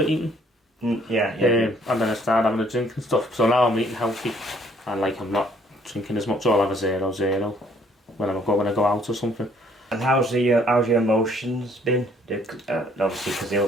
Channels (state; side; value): normal; both; correlation 0.62